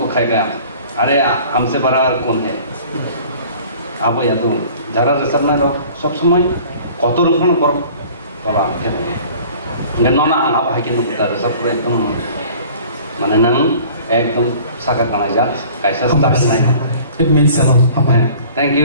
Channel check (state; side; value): inverted; both; correlation -0.48